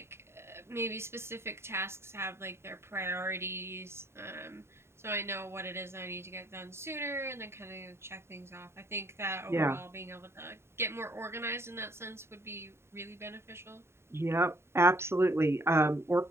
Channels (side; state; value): left; late; 0.12 ms